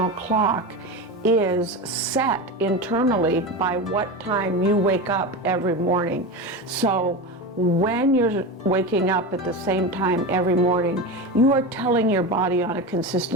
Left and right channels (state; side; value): normal; both; correlation 0.22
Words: clock is set internally by what time you wake up every morning. So when you're waking up at the same time every morning, you are telling your body on a